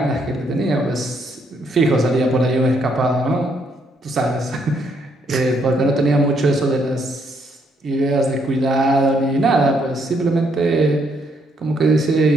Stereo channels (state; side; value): normal; both; correlation 0.72